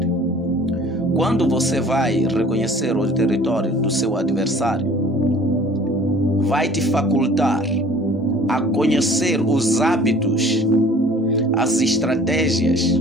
Quando você vai reconhecer o território do seu adversário, vai te facultar a conhecer os hábitos, as estratégias,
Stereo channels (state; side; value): normal; both; correlation 0.50